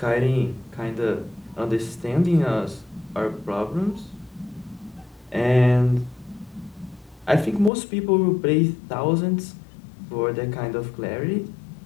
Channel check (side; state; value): right; drops out; at 7.7 s